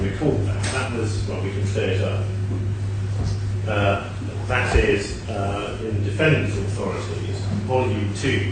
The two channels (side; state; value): both; identical; correlation 1.00